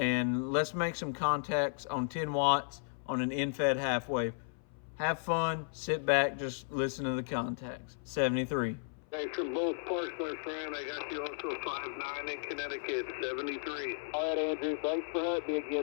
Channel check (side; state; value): right; silent; 55 dB below the other